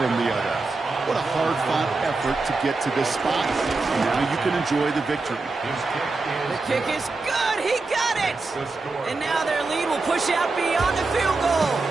the other. What a hard-fought effort to get to this spot. And now you can enjoy the victory. The kick is good. He got it. And now their lead will push out beyond the field goal.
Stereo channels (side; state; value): left; quieter; 3.7 dB